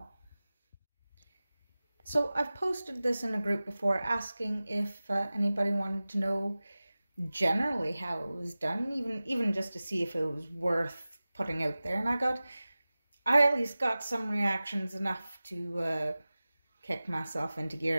So I've posted this in a group before asking if anybody wanted to know generally how it was done, even just to see if it was worth putting out there. And I at least got some reactions enough to kick myself into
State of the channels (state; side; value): inverted; both; correlation -0.97